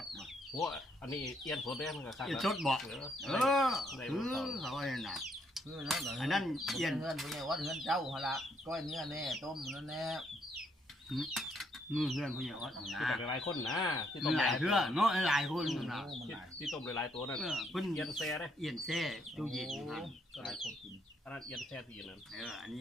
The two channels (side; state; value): both; normal; correlation 0.72